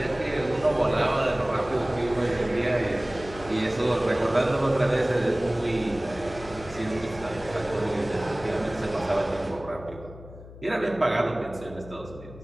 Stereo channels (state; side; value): noise; left; hum, 16 dB below the sound